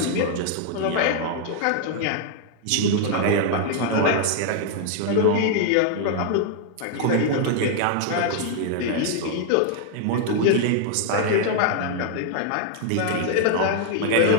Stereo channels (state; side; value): different; both; correlation 0.00